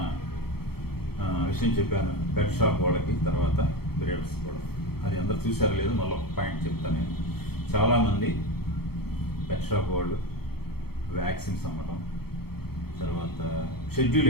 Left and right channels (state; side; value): late; right; 0.96 ms